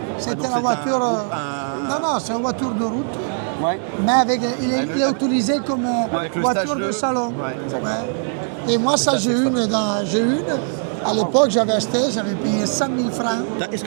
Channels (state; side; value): silent; left; digital silence